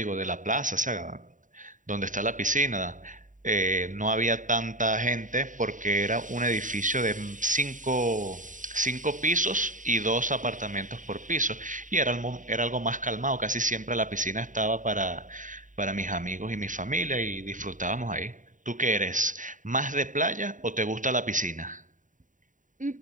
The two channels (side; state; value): left; late; 0.37 ms